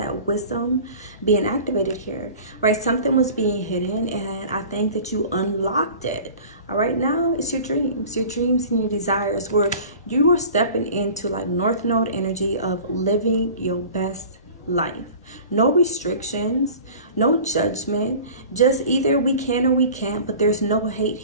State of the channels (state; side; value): inverted; both; correlation -0.42